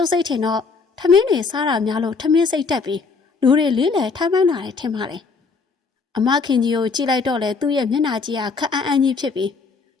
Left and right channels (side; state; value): right; quieter; 4.7 dB